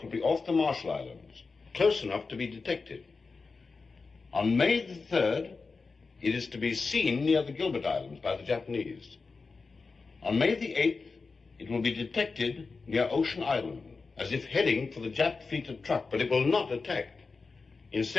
will be off the Marshall Islands, close enough to be detected. On May the 3rd, it is to be seen near the Gilbert Islands by the Japanese. On May the 8th, it will be detected near Ocean Island, as if heading for the Jap fleet at truck, but it will not attack.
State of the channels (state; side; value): quieter; right; 4.3 dB